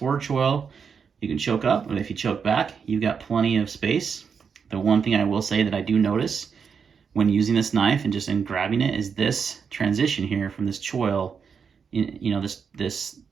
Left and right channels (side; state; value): left; quieter; 6.3 dB